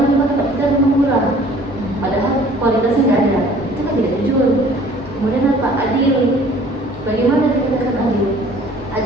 kita murah, padahal kualitasnya nggak ada, itu kan tidak jujur. Kemudian apa? Adil. Bagaimana dikatakan adil?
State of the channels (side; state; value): both; normal; correlation 0.52